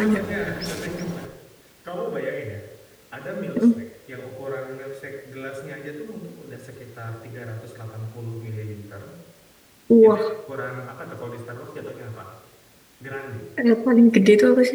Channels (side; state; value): both; identical; correlation 1.00